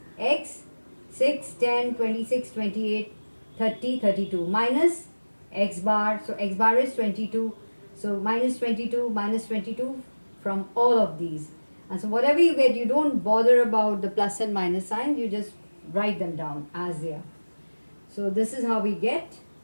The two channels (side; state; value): both; inverted; correlation -1.00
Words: x 6, 10, 26, 28, 30, 32 minus x bar. So x bar is 22. So minus 22 from all of these. And so whatever you get, you don't bother about the plus and minus signs. You just write them down as they are. So this is how we get